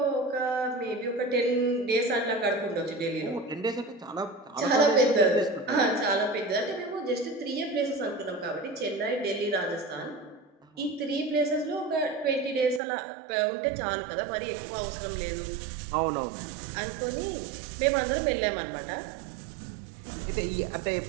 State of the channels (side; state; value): left; drops out; at 12.8 s